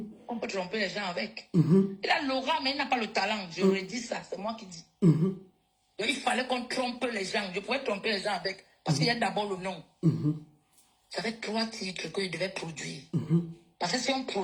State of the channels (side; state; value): both; identical; correlation 1.00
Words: On peut tromper les gens avec. Il a l'aura, mais il n'a pas le talent. Je lui ai dit ça, c'est moi qui dis. Donc, il fallait qu'on trompe les gens. Je pouvais tromper les gens avec. Parce qu'il y a d'abord le nom. J'avais 3 titres qu'il devait produire. Parce que si on